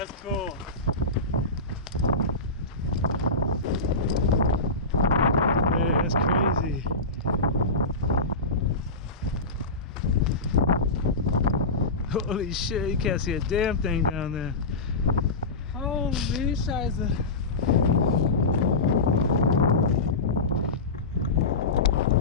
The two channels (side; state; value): right; quieter; 3.1 dB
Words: cool. Hey, that's crazy. Holy shit, you can't see a damn thing down there. Holy scheiße.